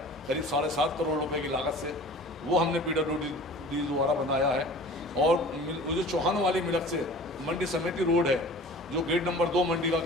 करीब 7.5 करोड़ रुपए की लागत से, वो हमने PWD द्वारा बनाया है। और जो चौहान वाली मिलक से मंडी समिति रोड है, जो गेट नंबर 2 मंडी का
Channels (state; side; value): normal; both; correlation 0.42